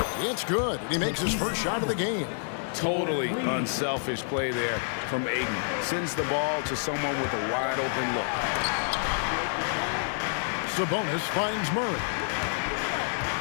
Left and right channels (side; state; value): right; silent; digital silence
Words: It's good. And he makes his first shot of the game. Totally unselfish play there from Ayton. Sends the ball to someone with a wide open look. Sabonis finds Murray.